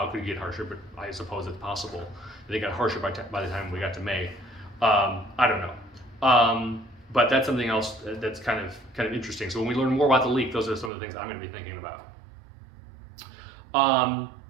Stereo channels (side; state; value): left; drops out; at 10.9 s